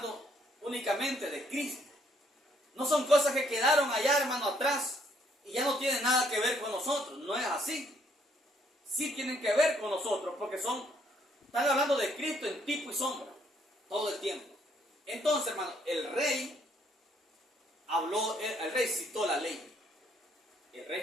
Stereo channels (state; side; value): normal; both; correlation 0.68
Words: únicamente de Cristo. No son cosas que quedaron allá, hermano, atrás y ya no tienen nada que ver con nosotros. No es así. Sí tienen que ver con nosotros porque están hablando de Cristo en tipo y sombra todo el tiempo. Entonces, hermano, el rey citó la ley. El rey